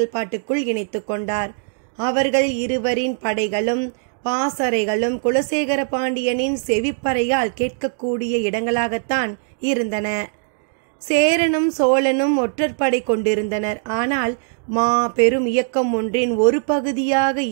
இணைத்து கொண்டார். அவர்கள் இருவரின் படைகளும் பாசறைகளும் குலசேகர பாண்டியனின் செவிப்பறையால் கேட்கக்கூடிய இடங்களாகத்தான் இருந்தன. சேரனும் சோழனும் ஒற்றற்படை கொண்டிருந்தனர். ஆனால் பெரும் இயக்கம் ஒன்றின் ஒரு பகுதியாக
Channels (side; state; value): left; silent; digital silence